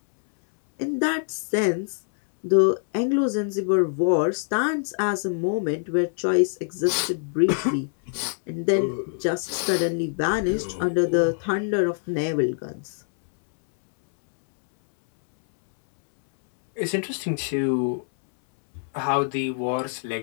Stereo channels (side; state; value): right; silent; 62 dB below the other